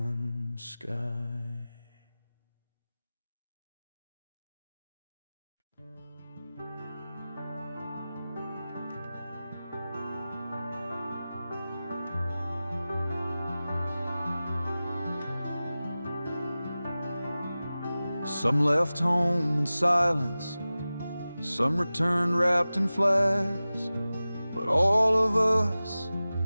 sky. Some left home in silence, some returned wrapped in flags, but all of us,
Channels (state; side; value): inverted; both; correlation -0.96